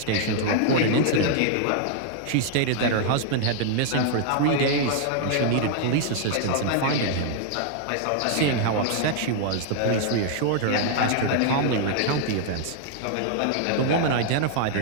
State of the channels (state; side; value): different; both; correlation 0.00